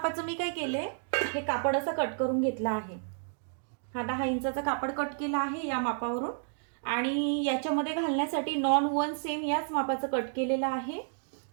मी काय केलंय, हे कापड असं कट करून घेतलं आहे. हा 10 इंचाचा कापड कट केला आहे या मापावरून, आणि याच्यामध्ये घालण्यासाठी नॉन वन सेम याच मापाचं कट केलेलं आहे,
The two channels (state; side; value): silent; left; digital silence